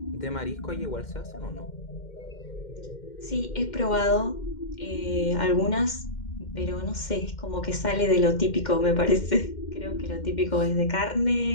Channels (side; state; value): right; late; 2.1 ms